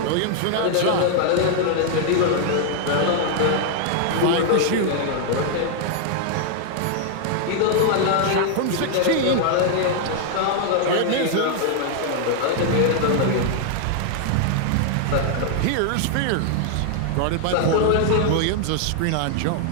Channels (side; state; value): both; different; correlation 0.00